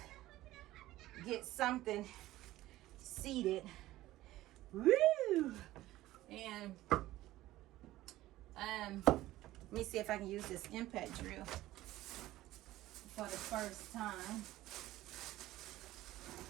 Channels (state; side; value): quieter; left; 16.0 dB